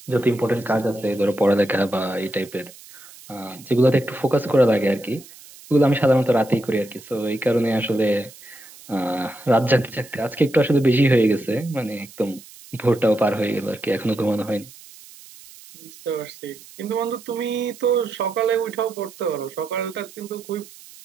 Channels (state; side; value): noise; right; hiss, 20 dB below the sound